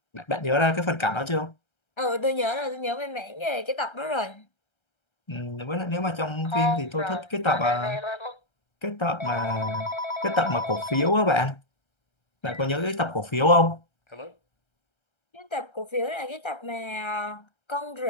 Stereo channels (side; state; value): right; late; 1.3 ms